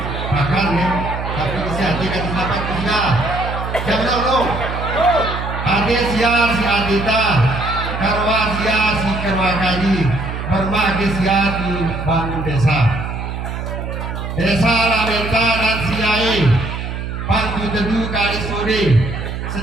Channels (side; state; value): right; noise; hum, 5 dB below the sound